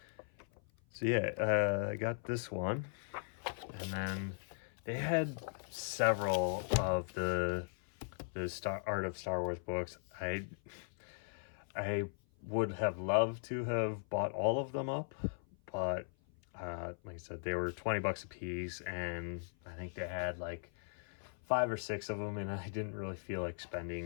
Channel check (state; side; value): silent; right; 52 dB below the other